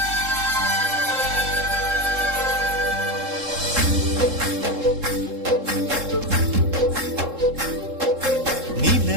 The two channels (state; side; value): late; left; 3.7 ms